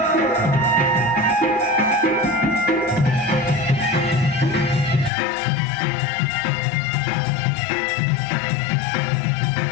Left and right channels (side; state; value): right; drops out; at 5.1 s